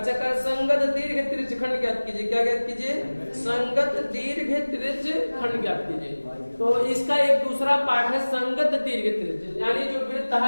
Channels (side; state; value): both; inverted; correlation -1.00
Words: कर संगत दीर्घ त्रिज्य खंड ज्ञात कीजिए। क्या ज्ञात कीजिए संगत दीर्घ त्रिज्य खंड ज्ञात कीजिए। तो इसका एक दूसरा पार्ट है संगत दीर्घ त्रिज्य, यानी जो वृत्त